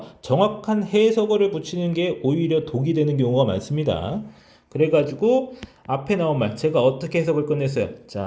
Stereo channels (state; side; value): identical; both; correlation 1.00